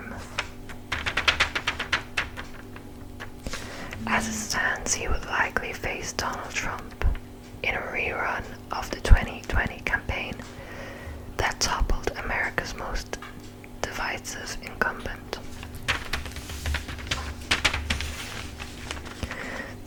As it stands, he would likely face Donald Trump in a rerun of the 2020 campaign that toppled America's most divisive incumbent.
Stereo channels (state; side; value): identical; both; correlation 1.00